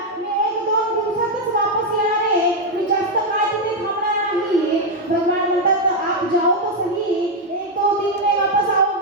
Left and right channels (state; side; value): normal; both; correlation 0.02